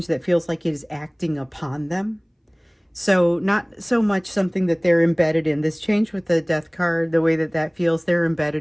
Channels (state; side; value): identical; both; correlation 1.00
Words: that feels like it is acting upon them. So not so much something that they're embedded in. This change with the death card, the way that that feels, they're